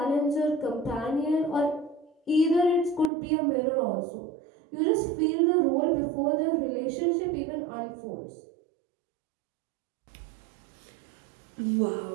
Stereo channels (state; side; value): drops out; left; at 3.1 s